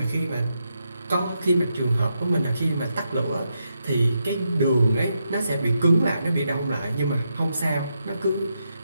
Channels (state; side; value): inverted; both; correlation -0.83